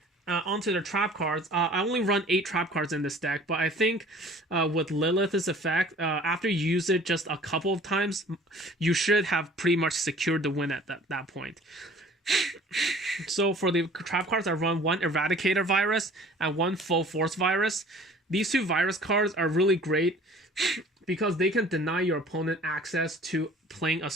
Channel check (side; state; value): both; normal; correlation 0.49